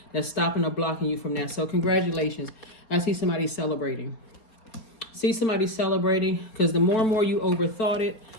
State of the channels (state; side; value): late; right; 4.3 ms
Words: that's stopping or blocking you from that. So congratulations. I see somebody celebrating. Because the more and more you overthought it,